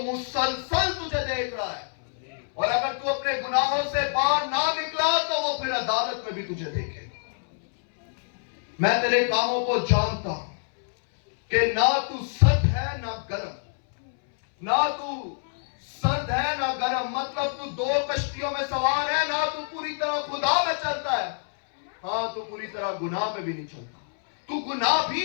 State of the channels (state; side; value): silent; right; 61 dB below the other